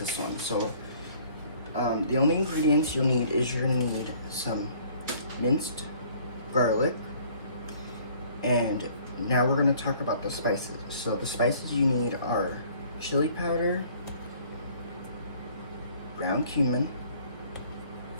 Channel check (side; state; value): both; inverted; correlation -0.56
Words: one. So the only ingredients you'll need is you're gonna need some minced garlic, and now we're gonna talk about the spices. So the spices you need are chili powder, ground cumin,